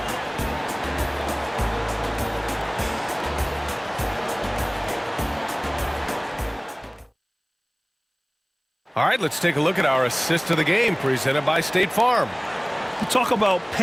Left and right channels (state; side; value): identical; both; correlation 1.00